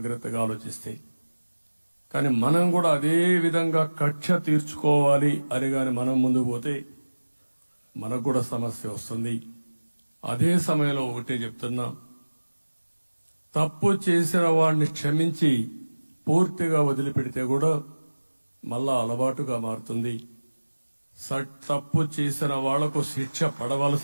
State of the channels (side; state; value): both; inverted; correlation -1.00